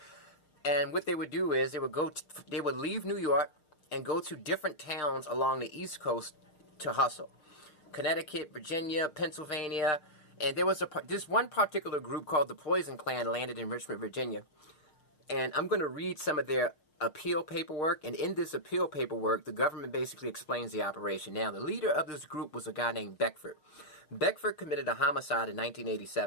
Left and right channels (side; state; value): right; late; 6.5 ms